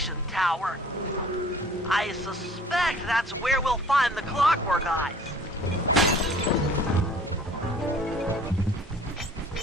tower. I suspect that's where we'll find the clockwork eyes.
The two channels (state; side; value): normal; both; correlation 0.51